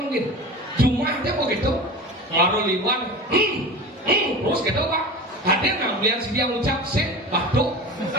mungkin Jumatnya begitu ngaruh liwan terus gitu Pak hadir ngambilan si dia ngucap sih batuk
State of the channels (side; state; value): both; normal; correlation 0.31